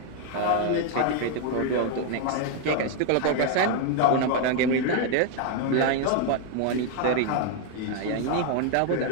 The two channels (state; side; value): different; both; correlation 0.00